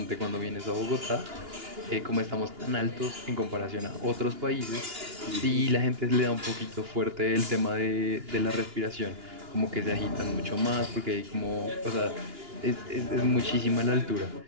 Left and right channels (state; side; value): late; left; 2.9 ms